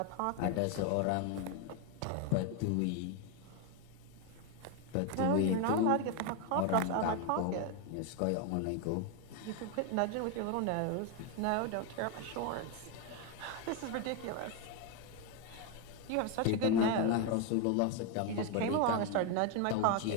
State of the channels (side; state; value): both; different; correlation 0.02